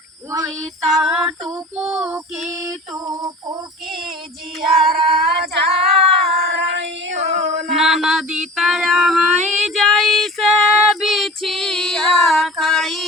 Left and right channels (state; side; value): normal; both; correlation 0.40